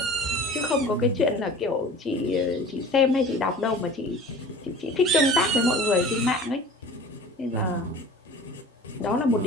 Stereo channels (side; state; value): both; normal; correlation 0.42